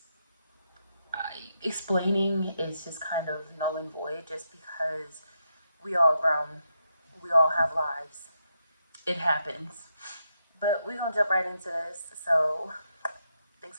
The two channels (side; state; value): both; inverted; correlation -0.82